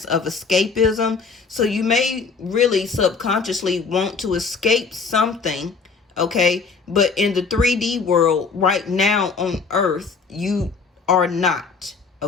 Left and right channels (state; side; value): quieter; right; 4.9 dB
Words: of escapism. So you may really subconsciously want to escape something, okay? But in the 3D world right now on Earth, you are not,